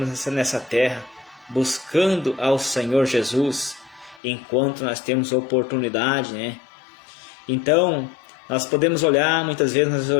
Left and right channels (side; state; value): right; drops out; at 4.2 s